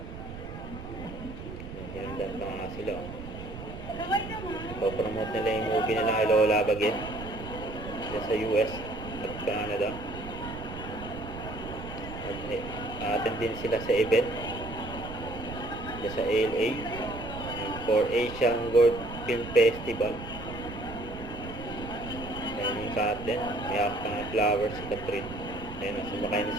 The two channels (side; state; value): right; noise; rumble, 11 dB below the sound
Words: Hinandaan pa nga sila. Ipopromote nila yung movie nila kay Lola Bagin dyan sa US at Canada. Attend din sila sa event dyan sa LA for Asian World Film Festival. Ayan yung Captain, may hawak pa ng flowers si Catherine. Ayan, sumakay na